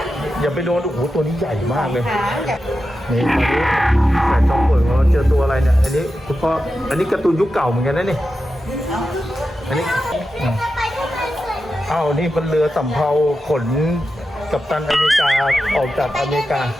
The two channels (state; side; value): normal; both; correlation 0.90